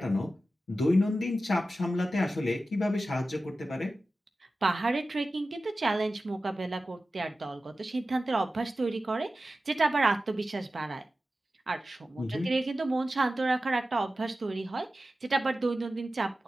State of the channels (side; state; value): both; normal; correlation 0.94